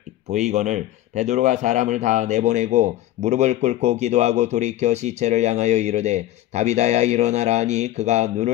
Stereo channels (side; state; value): right; quieter; 14.2 dB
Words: 보이거늘 베드로가 사람을 다 내보내고 무릎을 꿇고 기도하고 돌이켜 시체를 향하여 이르되 다비다야 일어나라 하니 그가